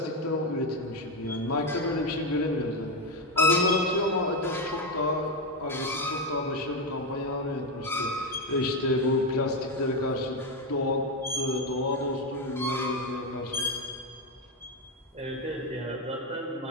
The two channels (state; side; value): normal; both; correlation 0.09